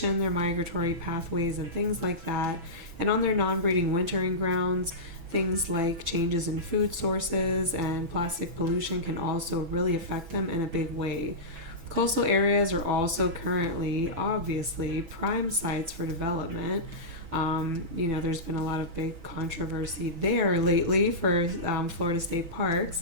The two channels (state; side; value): late; left; 6.1 ms